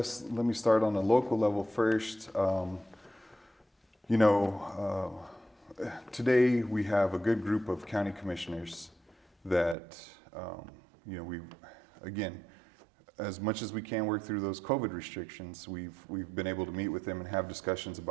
let me start on the local level first. today we have a good group of county commissioners that, we, again, as much as we can work through those COVID restrictions, we've been able to meet with them and have discussions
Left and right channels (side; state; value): left; drops out; at 9.8 s